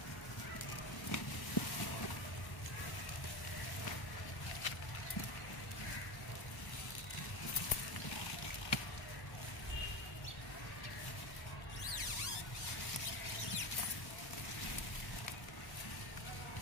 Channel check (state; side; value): late; right; 1.1 ms